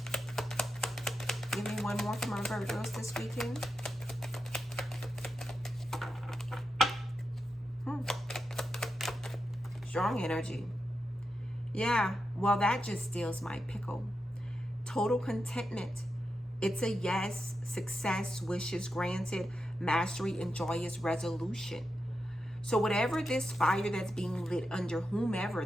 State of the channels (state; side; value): normal; both; correlation 0.88